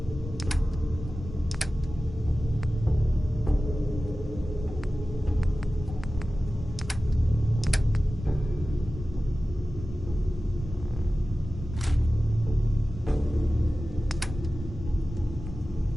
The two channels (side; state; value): both; normal; correlation 0.96